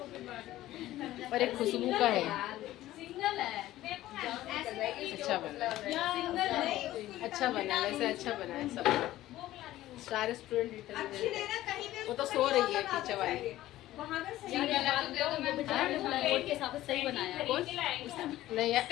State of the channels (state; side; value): quieter; right; 15.1 dB